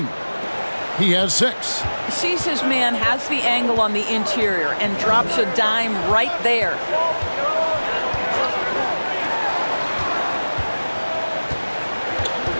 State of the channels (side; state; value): both; inverted; correlation -1.00